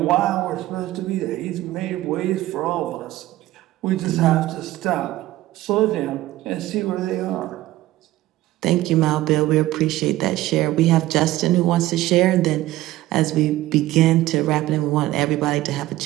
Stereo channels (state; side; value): quieter; left; 16.2 dB